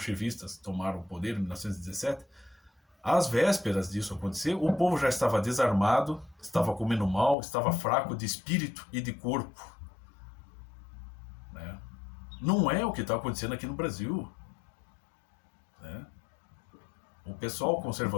tomaram o poder em 1917, às vésperas disso acontecer, o povo já estava desarmado, estava comendo mal, estava fraco de espírito e de corpo. Né? Não é o que está acontecendo aqui no Brasil. Né? O pessoal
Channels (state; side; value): drops out; right; at 7.4 s